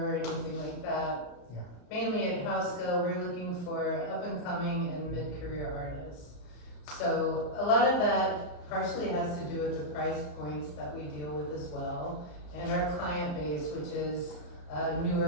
or anything like that. Yeah. Mainly at Hauska, we're looking for up-and-coming and mid-career artists. So a lot of that partially has to do with the price points that we deal with as well, and our client base, which is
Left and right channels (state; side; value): late; right; 34 ms